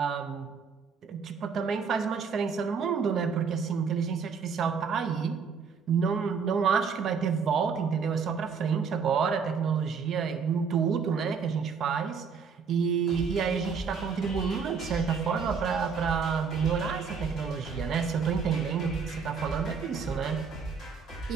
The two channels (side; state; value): left; quieter; 5.9 dB